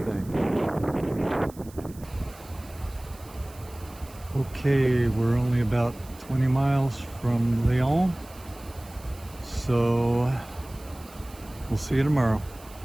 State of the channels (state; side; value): noise; right; hiss, 22 dB below the sound